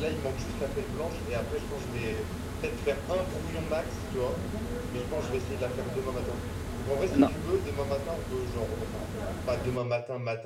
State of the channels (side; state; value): both; identical; correlation 1.00